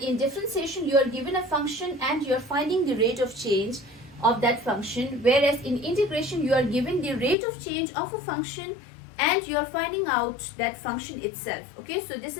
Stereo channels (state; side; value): drops out; right; at 7.4 s